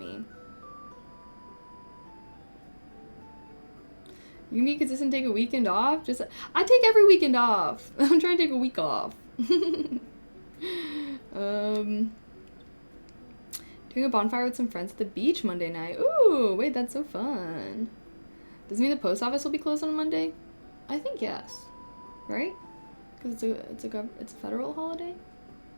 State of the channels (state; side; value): inverted; both; correlation -1.00